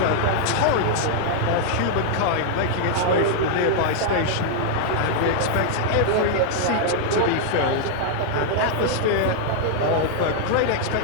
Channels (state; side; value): different; both; correlation -0.01